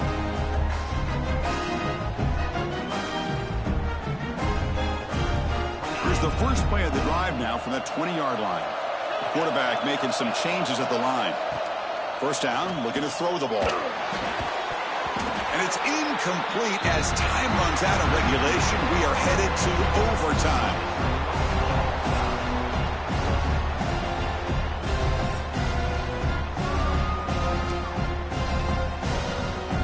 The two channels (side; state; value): both; identical; correlation 1.00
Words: The first play of the drive now from that 20-yard line. The quarterback making some changes at the line. First down, looking to throw the ball. And it's incomplete as time runs out of regulation. We are headed to overtime.